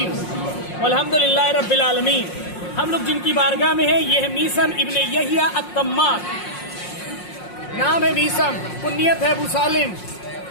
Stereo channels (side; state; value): right; late; 5.5 ms